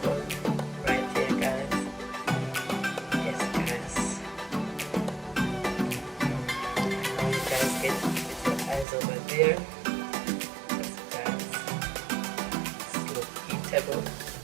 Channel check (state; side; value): drops out; left; at 8.8 s